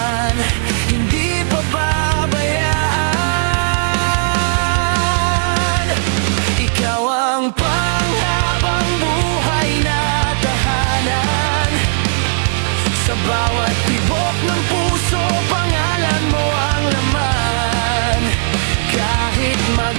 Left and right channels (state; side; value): silent; left; digital silence